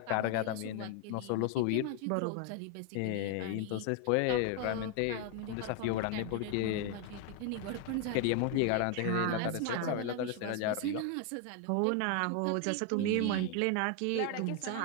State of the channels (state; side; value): different; both; correlation 0.01